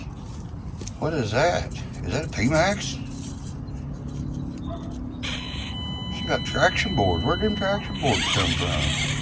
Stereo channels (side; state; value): both; identical; correlation 1.00